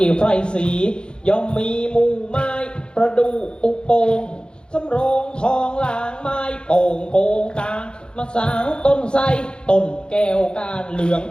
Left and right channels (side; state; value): right; late; 0.050 ms